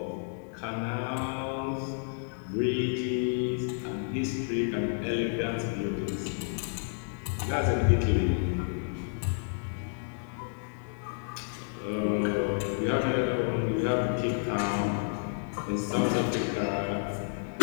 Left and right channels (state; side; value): silent; right; digital silence